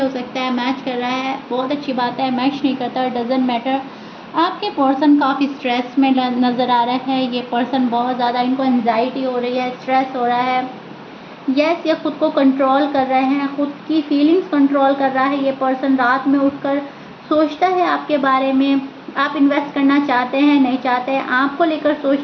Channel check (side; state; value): both; identical; correlation 1.00